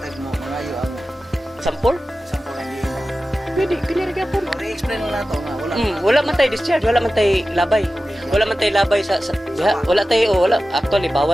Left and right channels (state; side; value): normal; both; correlation 0.94